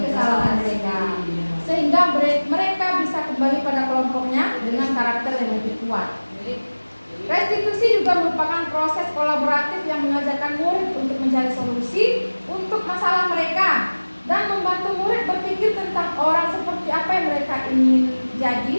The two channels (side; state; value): both; inverted; correlation -1.00